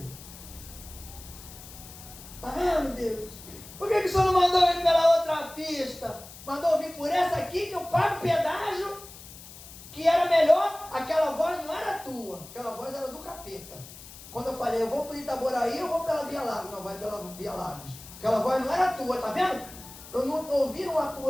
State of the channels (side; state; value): left; noise; hiss, 16 dB below the sound